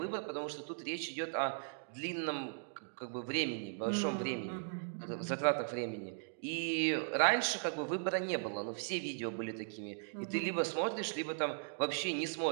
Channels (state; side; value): silent; left; digital silence